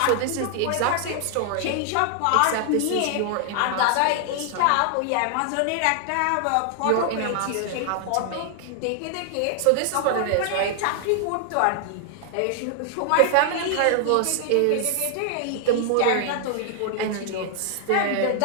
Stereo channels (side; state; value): both; different; correlation 0.00